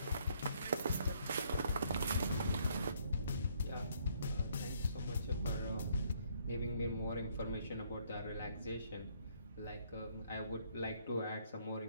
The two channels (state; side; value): inverted; both; correlation -0.67